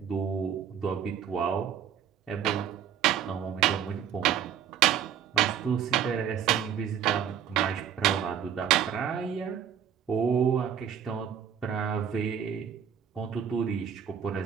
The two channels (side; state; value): left; quieter; 8.8 dB